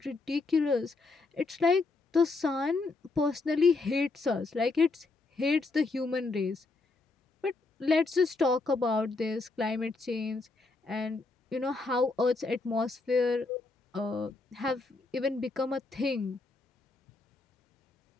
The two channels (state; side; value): quieter; right; 3.7 dB